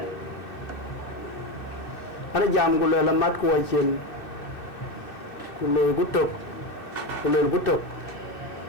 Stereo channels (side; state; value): right; late; 2.6 ms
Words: ana jam gule la mat ko chen ku le gutok